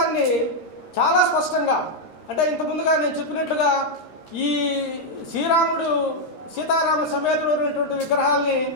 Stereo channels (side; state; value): right; late; 13 ms